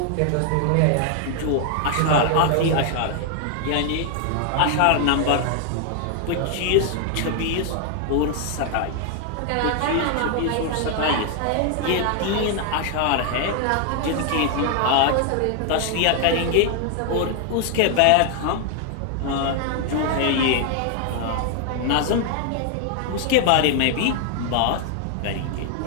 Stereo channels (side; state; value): both; different; correlation 0.00